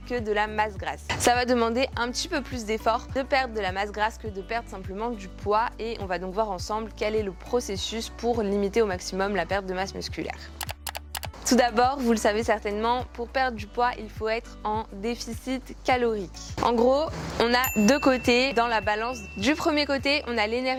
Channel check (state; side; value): identical; both; correlation 1.00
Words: que de la masse grasse. Ça va demander un petit peu plus d'effort de perdre de la masse grasse que de perdre simplement du poids et on va donc voir ensemble quel est le processus pour limiter au maximum la perte de masse musculaire. Tout d'abord, vous le savez certainement, pour perdre du poids, il faut être en déficit calorique. En gros, on a deux côtés dans la balance. Du premier côté, on a